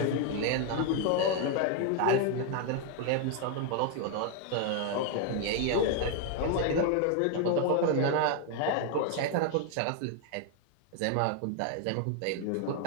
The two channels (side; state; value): both; different; correlation 0.01